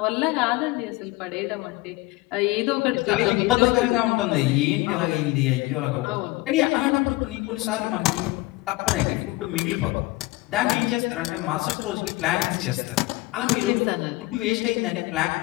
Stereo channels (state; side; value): quieter; right; 21.0 dB